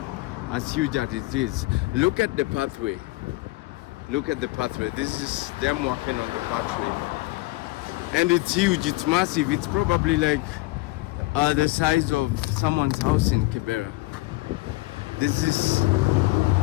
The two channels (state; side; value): quieter; right; 21.1 dB